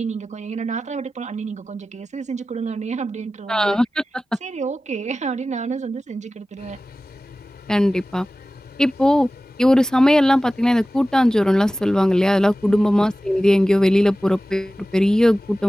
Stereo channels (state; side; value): normal; both; correlation 0.96